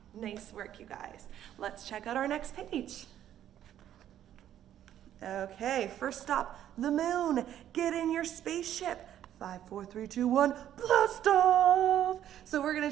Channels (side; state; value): left; quieter; 11.1 dB